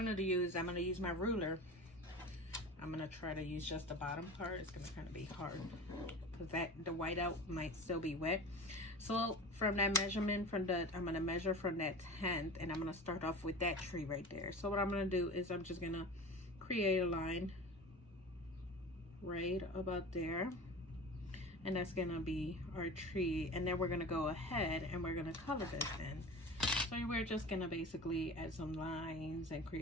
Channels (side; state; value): both; normal; correlation 0.34